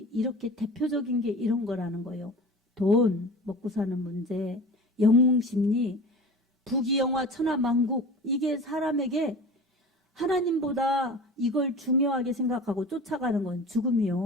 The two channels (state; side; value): normal; both; correlation 0.36